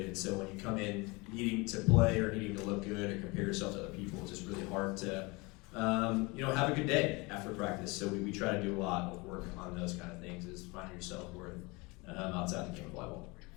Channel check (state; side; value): quieter; right; 25.9 dB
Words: and so when you come in needing to play or needing to look good or compare yourself to other people, it's just really hard to have a good day after practice. So we try to do a lot of work on those kind of things, is finding your self-worth outside the game of volleyball.